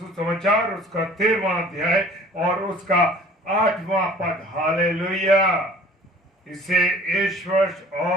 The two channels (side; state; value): both; normal; correlation 0.49